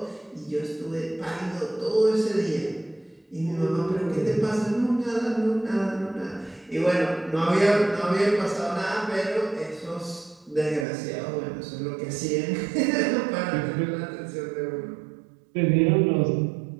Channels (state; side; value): drops out; left; at 10.9 s